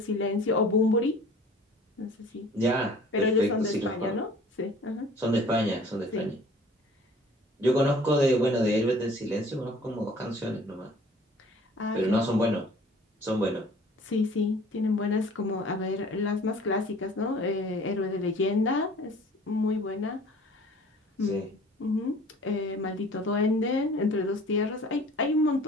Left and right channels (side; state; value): both; normal; correlation 0.49